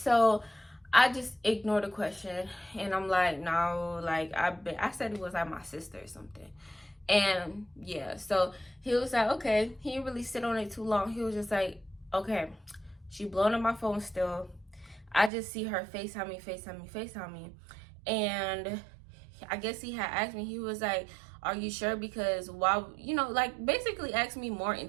I just ignored the question, and I'm like, no, like I said it was like my sister or something. And yeah, so he was like, okay. He didn't really sit on it too long. He was just like, okay, she blowing up my phone still. I just see her FaceTime me. And I guess he had asked me, he was like, are you sure? Because why, you know, like basically asked me more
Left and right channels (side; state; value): left; drops out; at 15.3 s